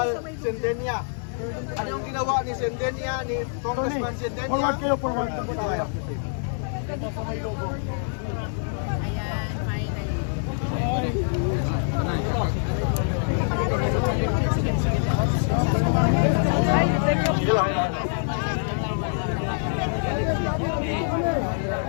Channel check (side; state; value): right; silent; digital silence